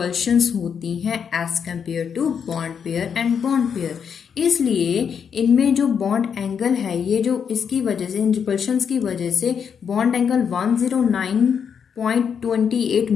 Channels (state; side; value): quieter; right; 7.2 dB